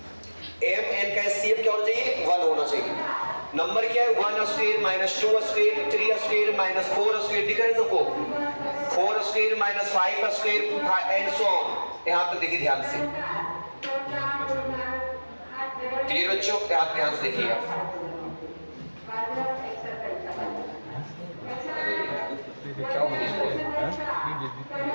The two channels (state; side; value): inverted; both; correlation -1.00